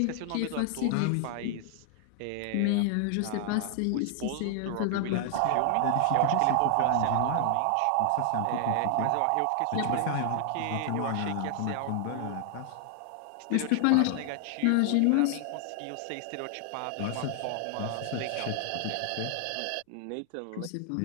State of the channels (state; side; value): different; both; correlation 0.00